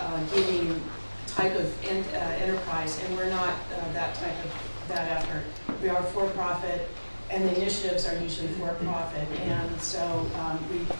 giving type of enterprise, and we're not that effort. We are for-profit, and the initiatives are usually for-profit, and so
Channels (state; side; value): inverted; both; correlation -1.00